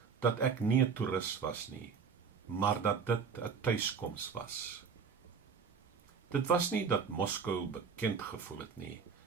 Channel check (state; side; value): quieter; left; 6.0 dB